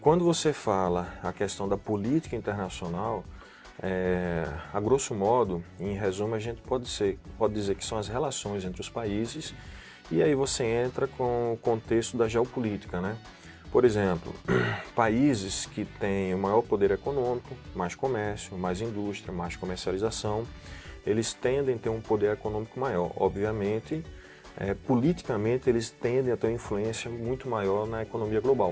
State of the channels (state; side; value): identical; both; correlation 1.00